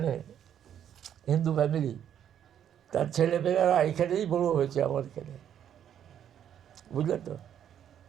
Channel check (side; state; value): left; quieter; 9.6 dB